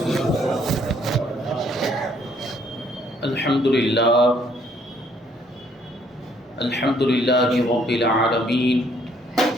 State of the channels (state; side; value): normal; both; correlation 0.65